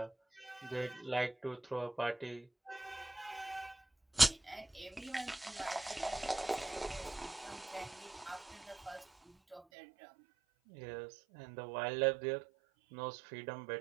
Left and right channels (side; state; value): left; drops out; at 9.6 s